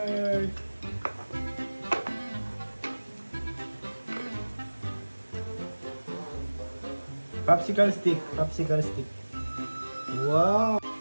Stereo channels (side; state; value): both; inverted; correlation -1.00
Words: Popsicle stick, popsicle stick. Wow!